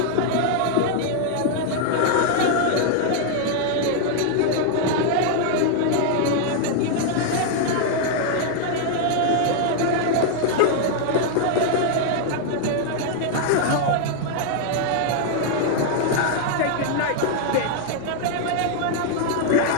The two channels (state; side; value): different; both; correlation 0.00